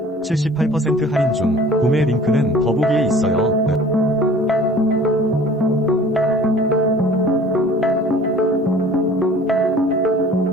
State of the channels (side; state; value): both; normal; correlation 0.48